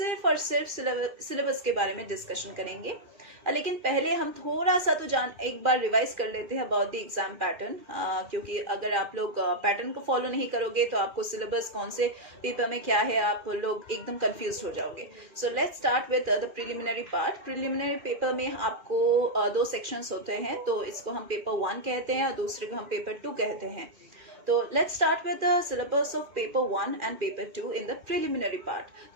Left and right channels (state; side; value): late; left; 2.4 ms